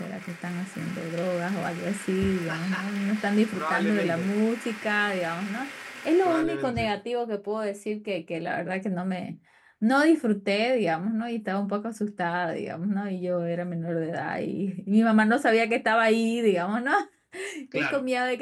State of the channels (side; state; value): both; identical; correlation 1.00